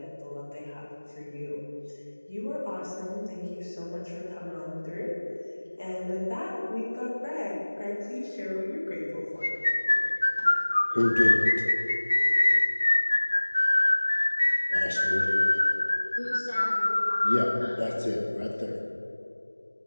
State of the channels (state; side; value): inverted; both; correlation -1.00